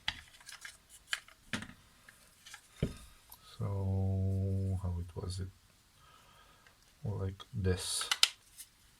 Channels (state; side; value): identical; both; correlation 1.00